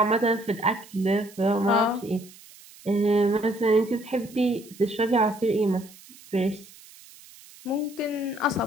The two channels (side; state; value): right; noise; hiss, 22 dB below the sound